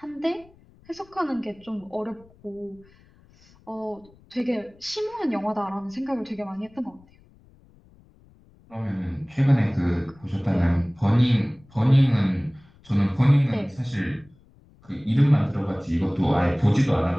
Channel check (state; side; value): noise; left; rumble, 28 dB below the sound